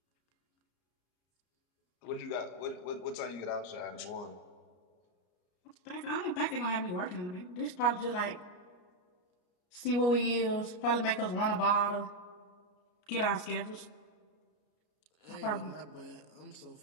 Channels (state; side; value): late; right; 33 ms